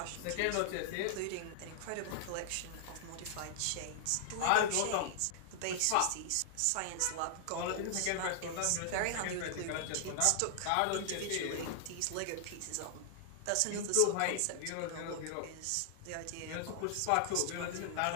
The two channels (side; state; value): both; different; correlation -0.01